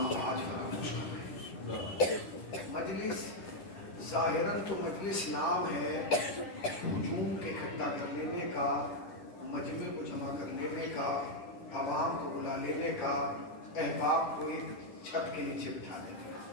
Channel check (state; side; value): late; right; 10 ms